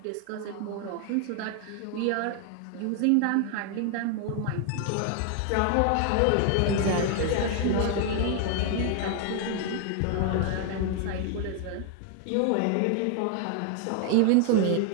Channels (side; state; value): both; different; correlation 0.00